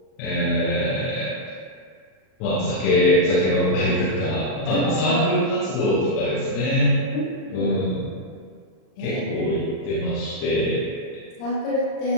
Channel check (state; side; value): late; right; 38 ms